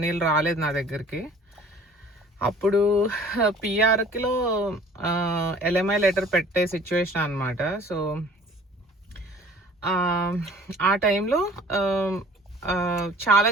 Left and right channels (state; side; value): normal; both; correlation 0.50